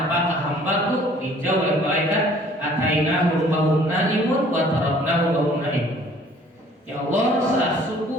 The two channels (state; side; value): normal; both; correlation 0.55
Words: apakah hambaku? Dijawab oleh malaikat, atainahum wa hum naimun wa taraknahum wa hum naimun. Ya Allah, saat